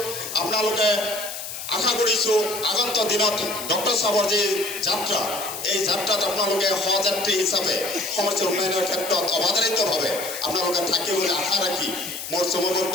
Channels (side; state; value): left; noise; hiss, 8 dB below the sound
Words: আপোনালোকে আশা কৰিছোঁ আগন্তুক দিনত ডক্টৰ চাহাবৰ যি যাত্ৰা এই যাত্ৰাত আপোনালোকে সহযাত্ৰী হিচাপে সমষ্টিৰ উন্নয়নৰ ক্ষেত্ৰত অবাধাৰিতভাৱে আপোনালোকে থাকিব বুলি আশা ৰাখি মোৰ চমু